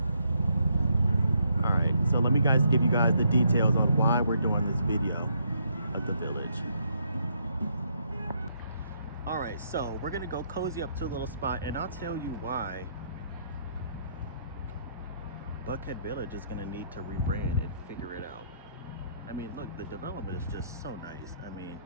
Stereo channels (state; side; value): inverted; both; correlation -0.73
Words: All right, so let me give you guys the details on why we're doing this video at the village. All right, so we're gonna go cozy up to a little spot, and I'll tell you why Buckhead Village is gonna need to rebrand and figure it out. I mean, look, the development is just so nice. I mean,